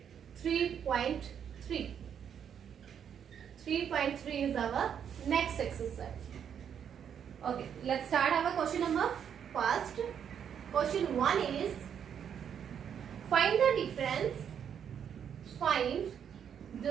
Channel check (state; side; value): quieter; left; 8.3 dB